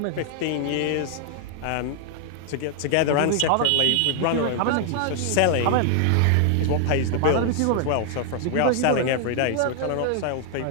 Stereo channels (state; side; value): different; both; correlation 0.00